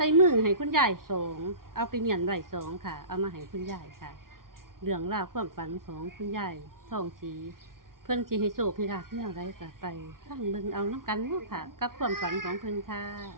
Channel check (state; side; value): late; left; 0.92 ms